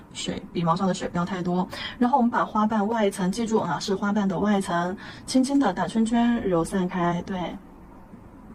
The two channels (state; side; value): identical; both; correlation 1.00